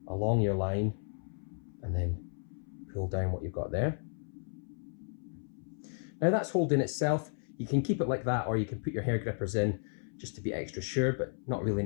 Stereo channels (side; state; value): right; silent; 55 dB below the other